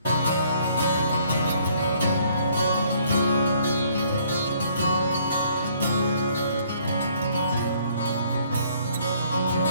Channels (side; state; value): both; inverted; correlation -0.62